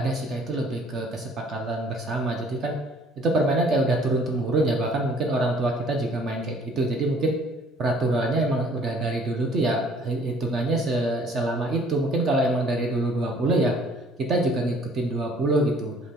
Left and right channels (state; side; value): normal; both; correlation 0.56